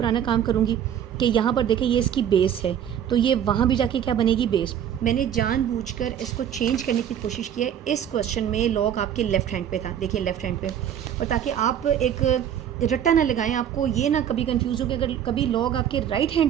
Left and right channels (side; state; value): left; quieter; 9.6 dB